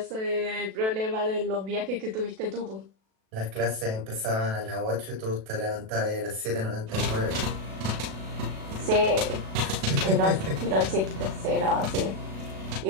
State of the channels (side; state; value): left; late; 37 ms